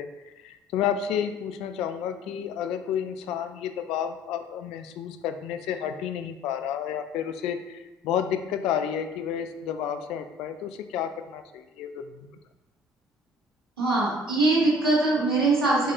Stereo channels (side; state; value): both; normal; correlation 0.51